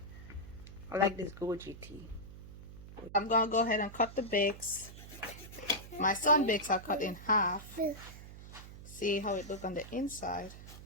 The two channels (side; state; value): right; noise; hum, 14 dB below the sound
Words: I like this goji tea. I'm gonna go ahead and cut the bakes. My son bakes are cut in half. See how it look on the inside.